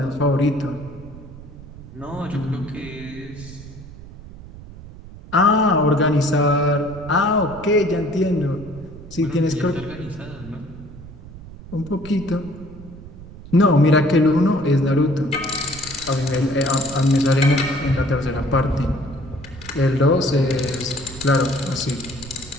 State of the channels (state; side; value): noise; right; rumble, 16 dB below the sound